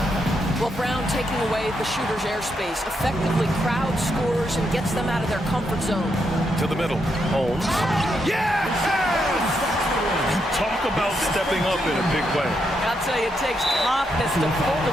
Well, Brown taking away the shooter's airspace effectively crowd scores and gets them out of their comfort zone. To the middle. Holmes. Yes! Talk about stepping up in a big way. I'll tell you, it takes confidence to pull the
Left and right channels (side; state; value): both; normal; correlation 0.80